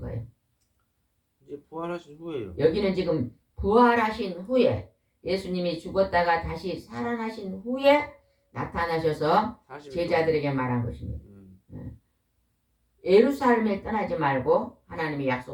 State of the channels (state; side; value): identical; both; correlation 1.00